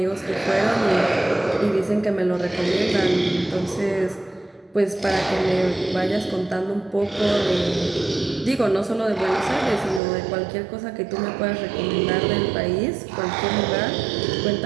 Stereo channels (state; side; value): drops out; left; at 10.0 s